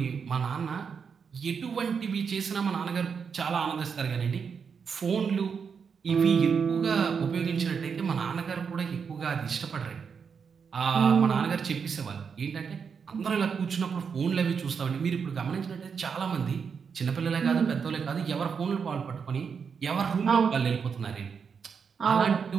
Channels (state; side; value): quieter; left; 6.3 dB